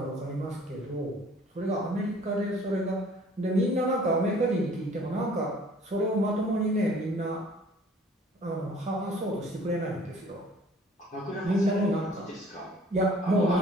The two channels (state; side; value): normal; both; correlation 0.53